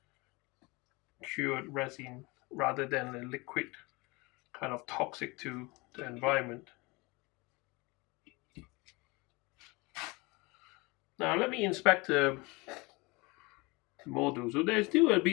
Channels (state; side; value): quieter; right; 25.4 dB